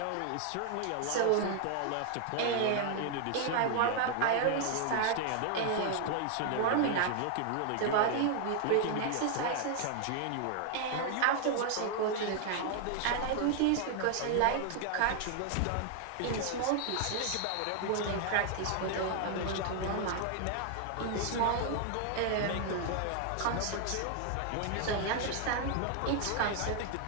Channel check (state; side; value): different; both; correlation 0.00